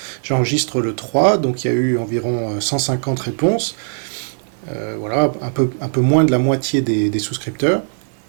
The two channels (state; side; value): silent; left; 56 dB below the other